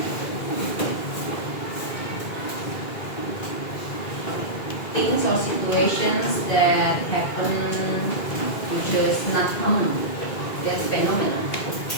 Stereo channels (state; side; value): late; right; 2.4 ms